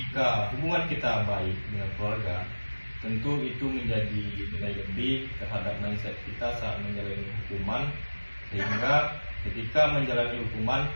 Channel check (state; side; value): inverted; both; correlation -1.00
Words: hubungan kita baik dengan keluarga, tentu itu menjadi nilai lebih terhadap mindset kita saat menjalani hukuman, sehingga ketika menjalani hukuman